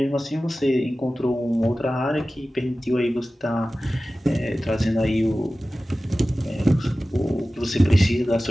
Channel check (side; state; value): both; normal; correlation 0.96